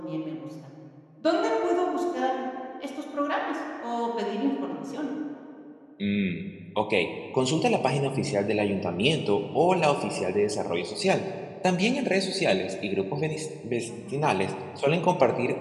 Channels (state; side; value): identical; both; correlation 1.00